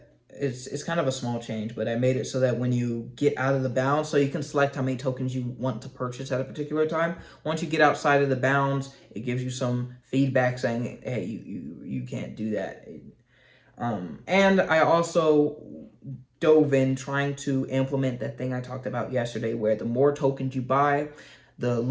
it's kind of a small change, but I made it so that when you get out of the bounds, so you can select how many tokens you want to purchase at a particular time. Once you get outside of the bounds, it gives you some feedback saying, hey, you can't do that. And I also dove in trying to implement that thing I talked about yesterday, where the more tokens you buy, the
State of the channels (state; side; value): identical; both; correlation 1.00